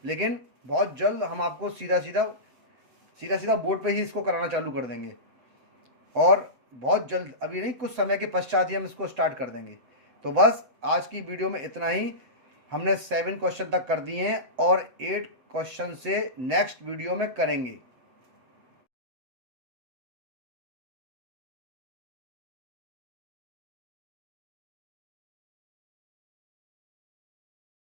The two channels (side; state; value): left; late; 7.8 ms